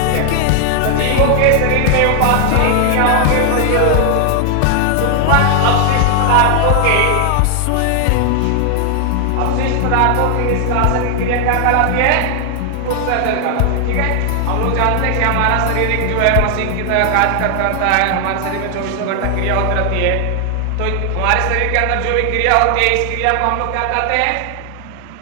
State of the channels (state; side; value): different; both; correlation 0.00